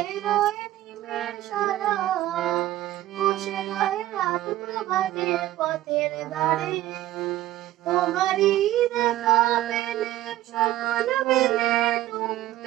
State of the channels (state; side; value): quieter; left; 14.8 dB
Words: নিমের সারা বসে রয় রাত প্রভাতে পথের ধারে তোমারই দেখা পেলে সকল বেলে